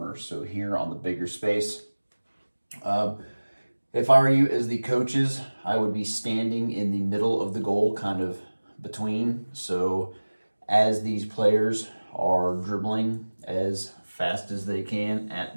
So here on the bigger space, um, if I were you as the coaches, I would be standing in the middle of the goal, kind of between. So as these players are dribbling as fast as they can at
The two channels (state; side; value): inverted; both; correlation -1.00